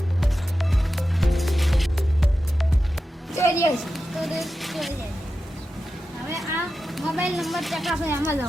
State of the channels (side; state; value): both; normal; correlation 0.92